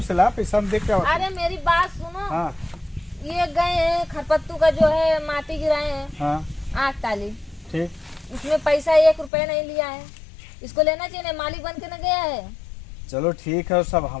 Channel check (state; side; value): drops out; right; at 9.3 s